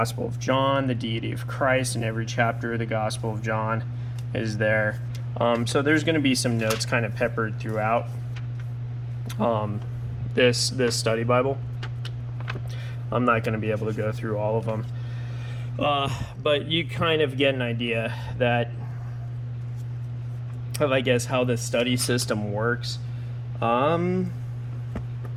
of John, the deity of Christ, in every chapter of the Gospel of John is there. So there's going to be some notes kind of peppered throughout this study Bible. I'm not going to be able to go through all of them. But you kind of get an idea of, I guess, how the study system works. And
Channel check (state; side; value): identical; both; correlation 1.00